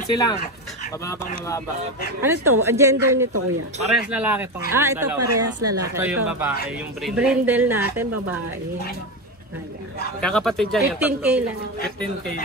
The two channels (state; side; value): normal; both; correlation 0.16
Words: lang. Mababang mababa. Ano to? Ang gender nito kuya? Parehas lalaki tong Ito dalawa. parehas lalaki. Ito yung babae, yung brindle. Brindle natin, babae. Ayan. Kakapatid dyan yung 15K lang. 15K